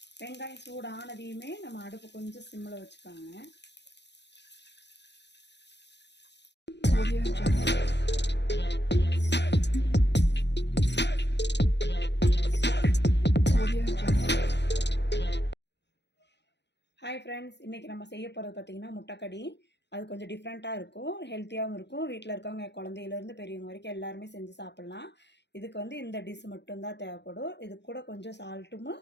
வெங்காயம் சூடு ஆனதையுமே நம்ம அடுப்பு கொஞ்சம் சிம்மில் வச்சுக்காங்க. ஹாய் ஃப்ரெண்ட்ஸ், இன்றைக்கி நம்ம செய்ய போகிறது பார்த்திங்கன்னா முட்டைக்கடி. அது கொஞ்சம் டிஃப்ரெண்ட்டாக இருக்கும், ஹெல்த்தியாகவும் இருக்கும். வீட்டில் இருக்கவங்க குழந்தையிலேருந்து பெரியவங்க வரைக்கும் எல்லாருமே செஞ்சு சாப்பிட்லாம். இதுக்கு வந்து இந்த டிஷ் மட்டும்தான் தேவைப்படும். இது கூட கொஞ்சம் சால்ட்டும்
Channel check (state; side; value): late; right; 0.50 ms